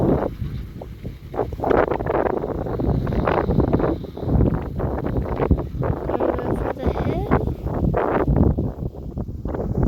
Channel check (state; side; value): identical; both; correlation 1.00